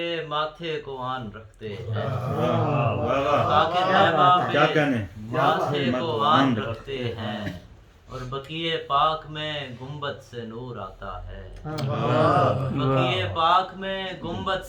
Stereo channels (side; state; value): both; identical; correlation 1.00